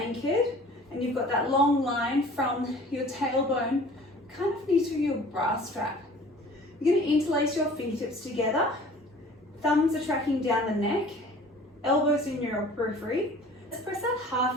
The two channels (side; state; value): both; normal; correlation 0.47